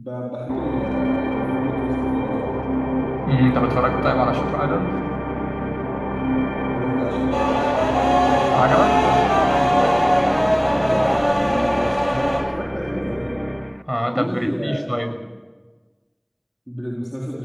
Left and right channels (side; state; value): both; identical; correlation 1.00